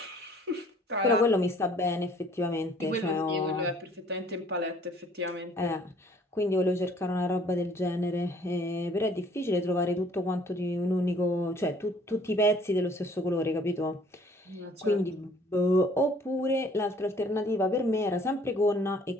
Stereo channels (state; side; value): normal; both; correlation 0.57